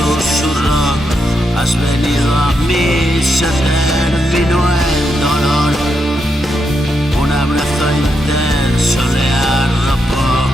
has venido a mí, se terminó el dolor. Un abrazo intenso le arropó,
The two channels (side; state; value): both; normal; correlation 0.82